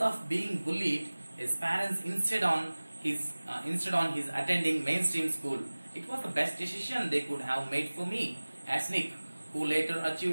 being bullied, his parents insisted on his attending mainstream school. It was the best decision they could have made for me, as Nick, who later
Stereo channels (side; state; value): both; inverted; correlation -1.00